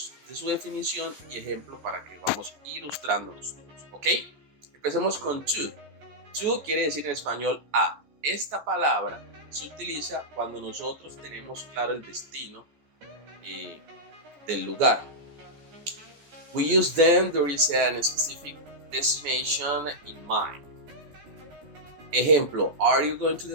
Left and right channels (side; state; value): left; late; 14 ms